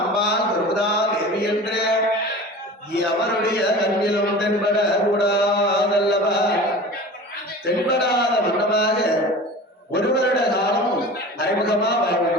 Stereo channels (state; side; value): normal; both; correlation 0.36